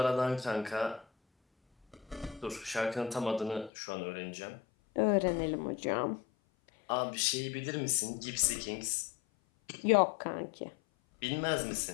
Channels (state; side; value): drops out; right; at 3.7 s